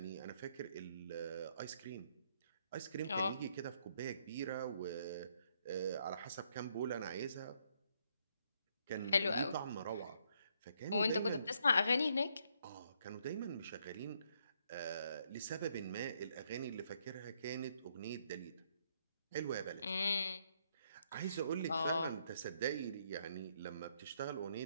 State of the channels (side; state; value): both; inverted; correlation -0.72